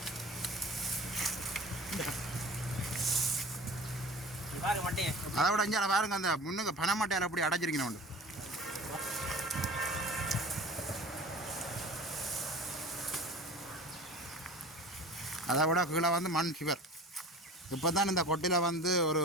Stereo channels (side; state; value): both; normal; correlation 0.40